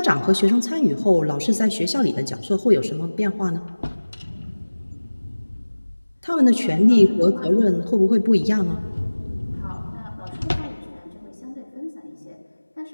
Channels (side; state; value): both; inverted; correlation -1.00